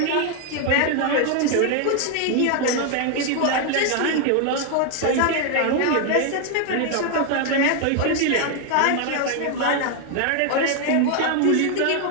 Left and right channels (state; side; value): different; both; correlation 0.01